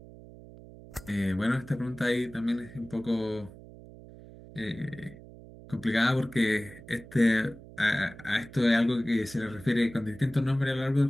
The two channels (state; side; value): noise; right; hum, 18 dB below the sound